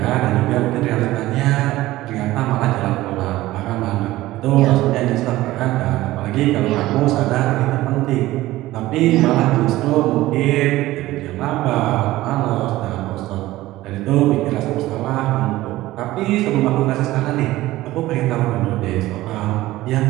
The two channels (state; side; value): quieter; left; 16.8 dB